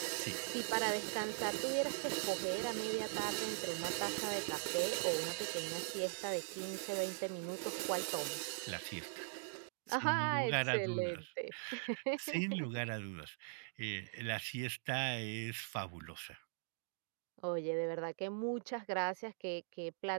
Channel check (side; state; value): left; silent; digital silence